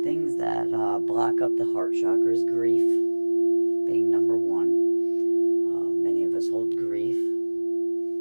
things that block up the heart chakra is grief, being number one. Many of us hold grief.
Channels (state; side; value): inverted; both; correlation -1.00